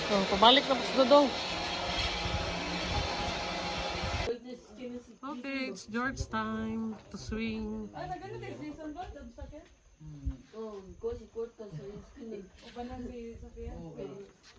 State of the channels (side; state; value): both; identical; correlation 1.00